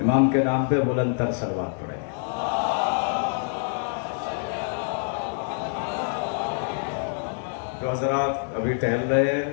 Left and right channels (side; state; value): right; silent; 61 dB below the other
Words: کے نام پہ بلند تر صلوات پڑھیں. جو حضرات ابھی ٹہل رہے ہیں،